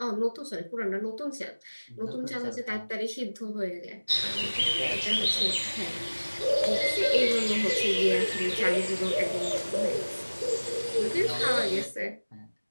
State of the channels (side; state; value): both; inverted; correlation -1.00